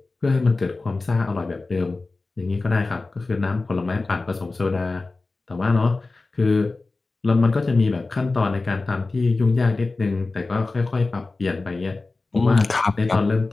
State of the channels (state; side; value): quieter; right; 3.5 dB